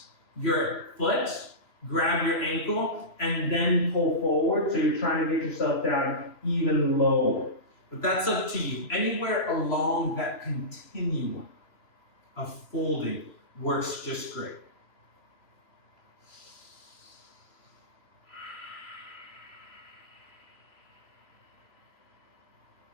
your foot, grab your ankle, and then pull forward. So you're trying to get yourself down even lower. But that's up to you. Anywhere along that continuum of folding works just great.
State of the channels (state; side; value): late; right; 3.0 ms